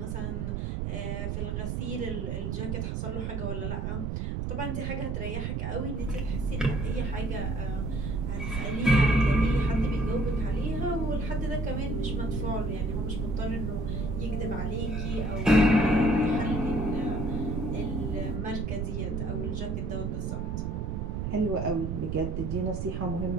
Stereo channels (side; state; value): right; noise; rumble, 1 dB below the sound